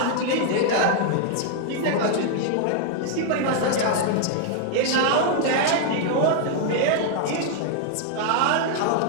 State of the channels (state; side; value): different; both; correlation 0.00